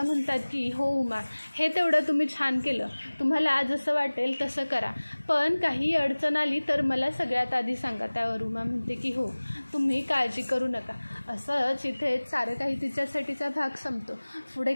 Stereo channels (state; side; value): inverted; both; correlation -1.00